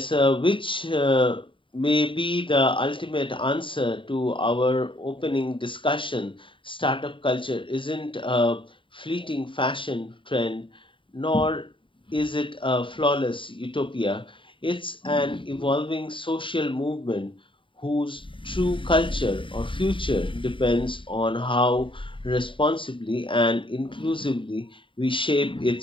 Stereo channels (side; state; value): right; late; 0.25 ms